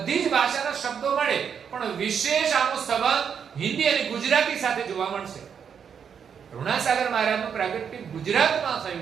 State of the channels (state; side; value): quieter; left; 7.3 dB